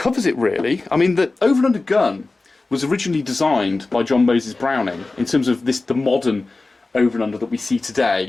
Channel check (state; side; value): quieter; right; 3.4 dB